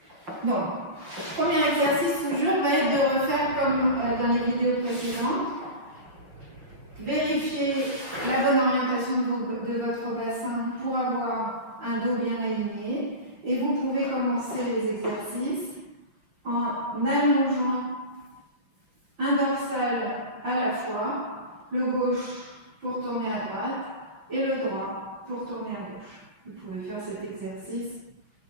Donc, premier exercice toujours va être de refaire comme dans les vidéos précédentes. Vérifier la bonne orientation de votre bassin pour avoir un dos bien aligné. Et vous pouvez commencer les exercices en allongeant un dorsal à la fois, le gauche pour tourner à droite et le droit pour tourner à gauche. Vous pouvez faire cet exercice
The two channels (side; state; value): left; late; 6.0 ms